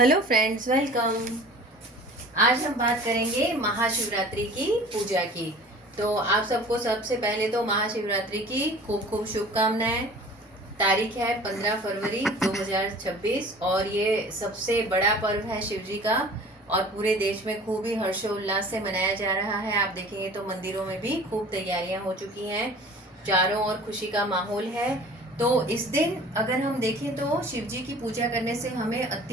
friends, welcome. आज हम बात करेंगे महाशिवरात्रि की पूजा की। तो आप सबको सबसे पहले तो महाशिवरात्रि की खूब खूब शुभकामनाएं। तारीख है 15 फरवरी 2026 और ये सबसे बड़ा पर्व है शिव जी का और पूरे देश में खूब ही हर्षोल्लास से मनाया जा रहा है। आप देखेंगे तो मंदिरों में भी खूब तैयारियां हो चुकी हैं, चारों ओर खुशी का माहौल है। तो इस दिन अगर हम देखें तो शिव जी की पूजा करने से हमें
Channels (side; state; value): both; normal; correlation 0.44